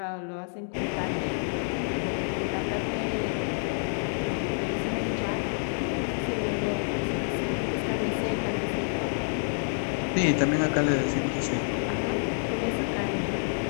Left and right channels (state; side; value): silent; right; digital silence